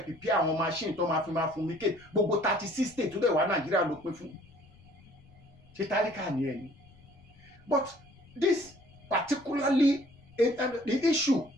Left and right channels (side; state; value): left; noise; rumble, 26 dB below the sound